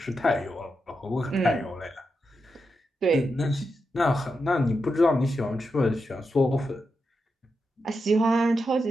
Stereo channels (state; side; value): normal; both; correlation 0.87